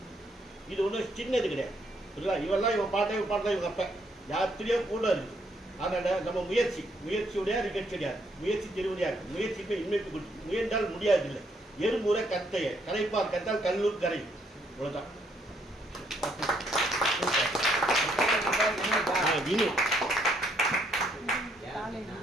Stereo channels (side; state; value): both; normal; correlation 0.71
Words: இது ஒன்றும் சின்னது கிடையாது. இல்லை, இவெல்லாம் இவன் பாட்டா இவங்க அப்போ யாத்திரையோ கூட இருக்குது. அதனால் நம்ம முயற்சியுடைய நிகழ்ச்சி கிடையாது, முயற்சி திருவடியாக முயற்சிக்கு இன்மைப்பு கொடுத்து முயன்றால் முடியாது இல்லை. எறும்புரை கத்தைய கரைப்பார் கத்தால் கல்லூர் கரை. இவ்வளோதான்.